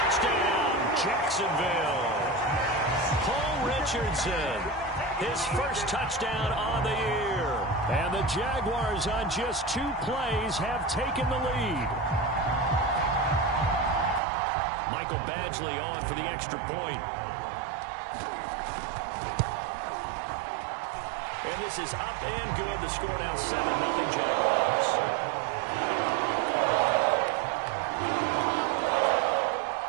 Jacksonville. Paul Richardson, his first touchdown on the year. And the Jaguars on just 2 plays have taken the lead. Michael Badgley on for the extra point. And this is up and good. The score now 7-0 Jaguars.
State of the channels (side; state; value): left; drops out; at 14.2 s